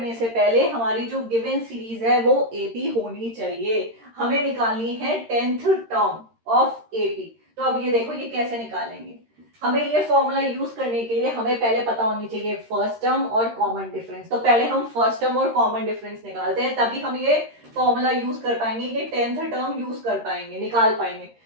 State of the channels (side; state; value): left; late; 13 ms